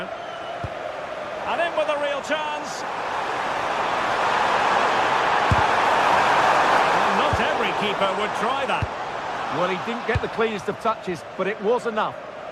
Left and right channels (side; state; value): both; identical; correlation 1.00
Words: And in with a real chance. Well, not every keeper would try that. Well, he didn't get the cleanest of touches, but it was enough.